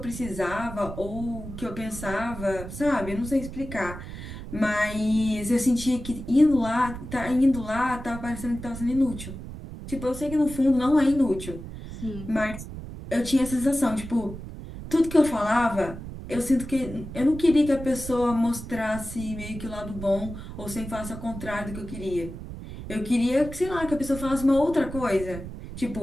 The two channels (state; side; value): noise; right; rumble, 10 dB below the sound